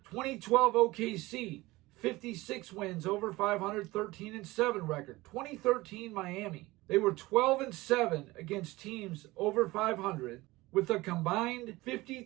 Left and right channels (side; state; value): left; quieter; 20.1 dB